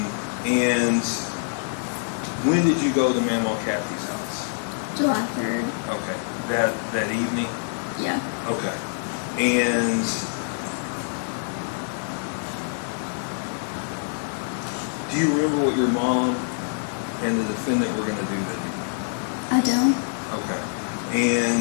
And when did you go to Mama Kathy's house? July 3rd. Okay. That evening? Yeah. Okay. And do you remember what your mom and the defendant were going to do that evening? I don't. Okay.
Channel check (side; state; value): right; silent; digital silence